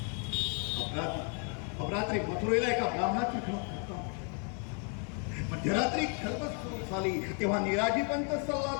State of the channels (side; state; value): right; quieter; 39.0 dB